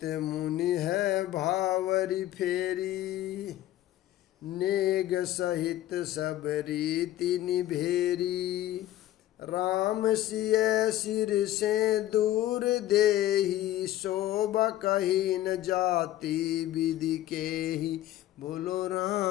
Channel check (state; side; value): quieter; right; 14.0 dB